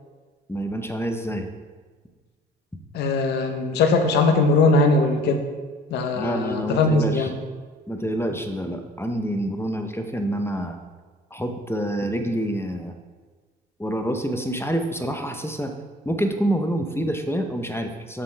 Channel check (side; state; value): both; normal; correlation 0.51